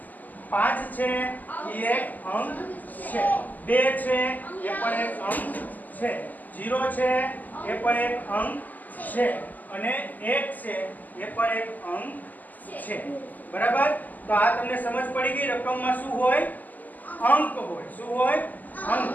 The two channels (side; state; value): right; late; 0.082 ms